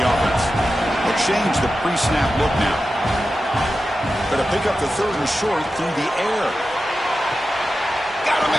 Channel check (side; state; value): both; normal; correlation 0.92